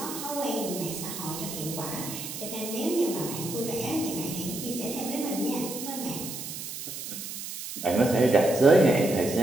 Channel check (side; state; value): right; noise; hiss, 8 dB below the sound